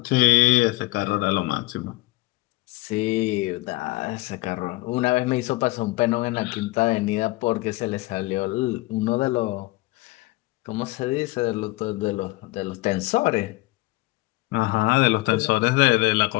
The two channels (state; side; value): quieter; right; 21.1 dB